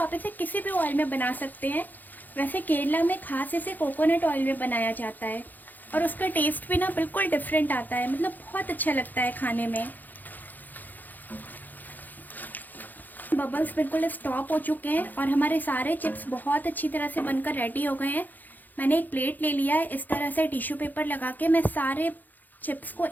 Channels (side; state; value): right; late; 0.085 ms